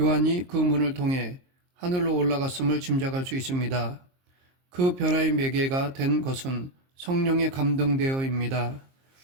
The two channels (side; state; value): left; late; 22 ms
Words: 그 문을 통해 하늘로 올라갔음을 짐작할 수 있습니다. 그 변화의 매개가 된 것은 성령에 감동되어입니다.